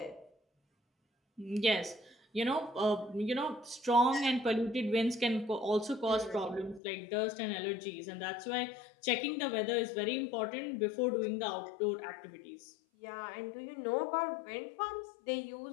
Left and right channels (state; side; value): drops out; right; at 6.8 s